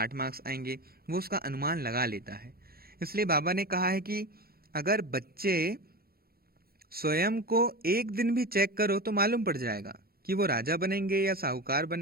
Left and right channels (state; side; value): late; left; 0.44 ms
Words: मार्क्स आएंगे, वो उसका अनुमान लगा लेता है। इसलिए बाबा ने कहा है कि अगर बच्चे स्वयं को एक दिन भी चेक करो तो मालूम पड़ जाएगा कि वो राजा बनेंगे या साहूकार